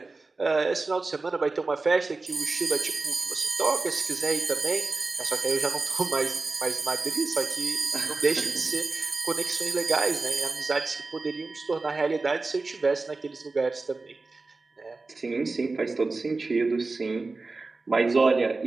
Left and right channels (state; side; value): quieter; left; 3.7 dB